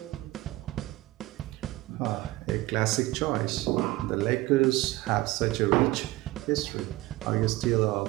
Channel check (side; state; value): left; quieter; 18.6 dB